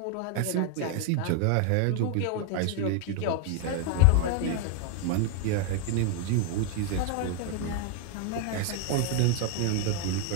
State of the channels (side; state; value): both; different; correlation 0.01